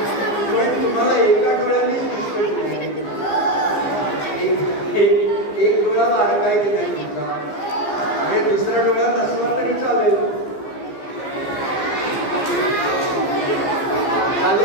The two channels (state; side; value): late; right; 15 ms